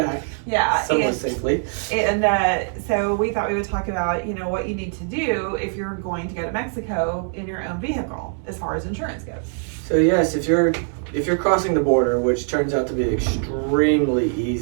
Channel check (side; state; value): left; silent; 57 dB below the other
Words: yeah, somewhat and, safely. and so we thought we would talk about what you need to do if you're going to go to Mexico in your own vehicle as far as insurance goes. So yes, if you're crossing the border, which turns out to be extremely